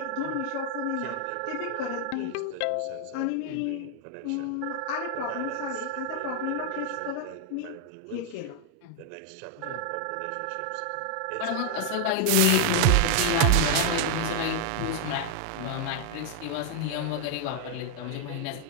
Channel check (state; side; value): different; both; correlation 0.00